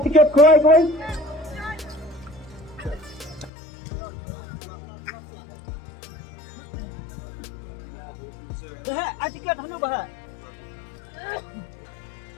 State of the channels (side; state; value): right; drops out; at 3.5 s